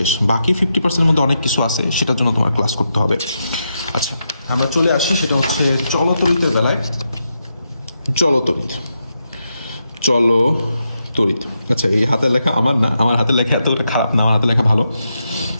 বাকি 50% মধ্যে অনেক কিছু আছে, সেটার জন্য তোমার ক্লাস করতে হবে। আচ্ছা, আমরা চলে আসি, সেটা হচ্ছে চলতড়িতের বেলায়। চলতড়িৎ। আচ্ছা, এই হাতের লেখা আমার না, আমার হাতের লেখা এতটা খারাপ না, আমার হাতের লেখা ভালো।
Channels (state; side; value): inverted; both; correlation -0.85